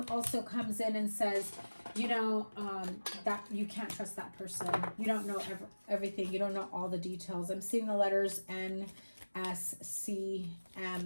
comes in and says, you know, that you can't trust that person. You don't know everything. You don't know all the details. I'm seeing the letters N, S, C,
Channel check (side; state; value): both; inverted; correlation -1.00